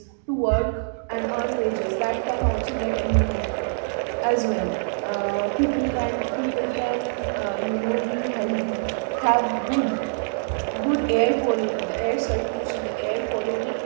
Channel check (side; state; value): left; silent; digital silence